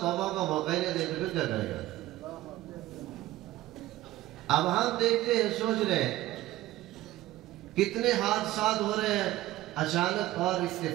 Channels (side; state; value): left; quieter; 16.2 dB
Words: توبہ کا موقع نہیں دے تو پھر کیا کرے گا؟ اب ہم دیکھتے ہیں، سوچ رہے ہیں کتنے حادثات ہو رہے ہیں، اچانک اور